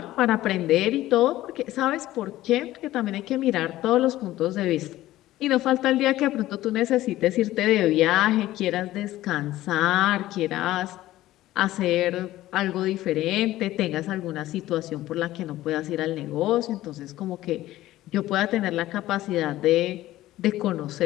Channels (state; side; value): quieter; right; 15.4 dB